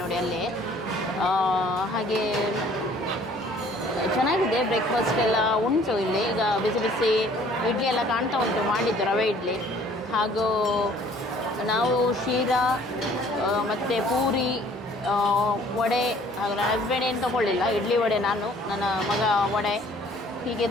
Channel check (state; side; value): normal; both; correlation 0.56